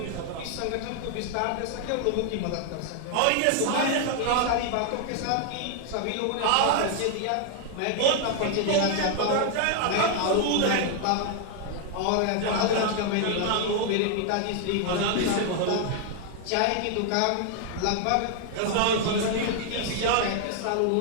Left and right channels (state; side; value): different; both; correlation 0.00